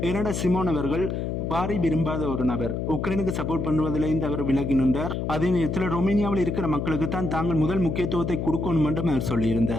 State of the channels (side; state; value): left; noise; hum, 2 dB below the sound